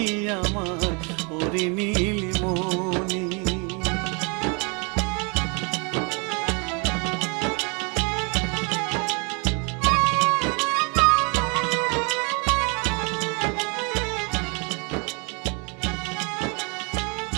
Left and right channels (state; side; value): quieter; left; 33.1 dB